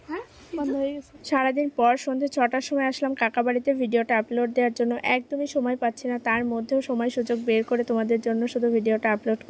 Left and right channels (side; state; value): both; identical; correlation 1.00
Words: সারাদিন পর সন্ধ্যে 6টার সময় আসলাম কাকা বাড়িতে ভিডিওটা আপলোড দেওয়ার জন্য। একদমই সময় পাচ্ছি না, তার মধ্যেও সময় সুযোগ বের করে তোমাদের জন্য শুধু ভিডিওটা আপলোড